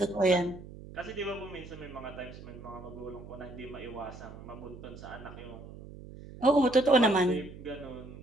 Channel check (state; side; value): noise; right; hum, 15 dB below the sound